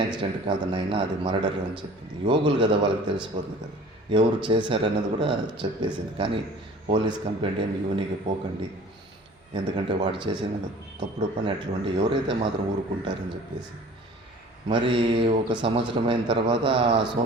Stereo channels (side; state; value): both; normal; correlation 0.46